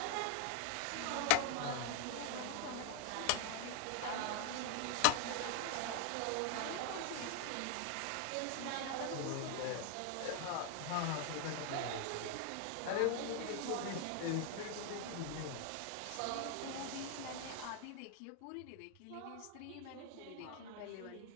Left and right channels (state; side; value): different; both; correlation 0.01